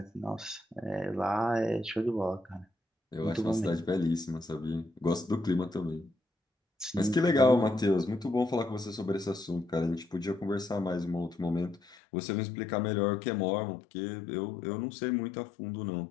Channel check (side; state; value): right; drops out; at 12.0 s